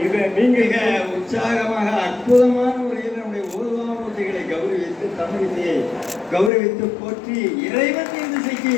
இதை நீங்க மிக உற்சாகமாக அற்புதமான முறையில் நம்முடைய ஓதுவாமூர்த்திகளை கௌரவித்து தமிழ் இசையை கௌரவித்து போற்றி இறைவன் இந்த இசைக்கு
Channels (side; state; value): right; drops out; at 6.5 s